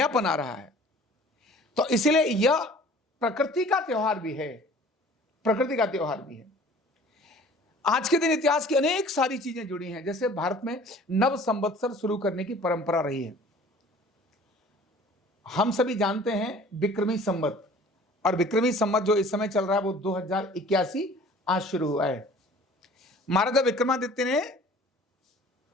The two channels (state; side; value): normal; both; correlation 0.48